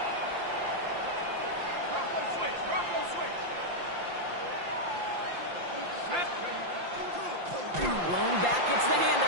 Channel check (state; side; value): late; left; 5.8 ms